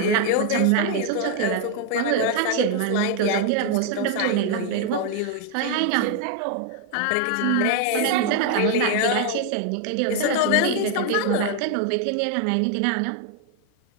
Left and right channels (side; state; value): both; different; correlation 0.00